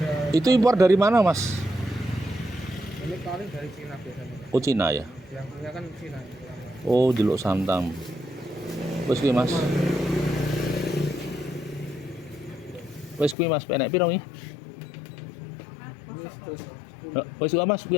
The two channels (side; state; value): right; drops out; at 13.4 s